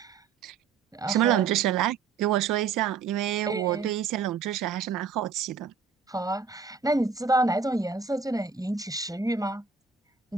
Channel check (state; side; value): quieter; left; 5.6 dB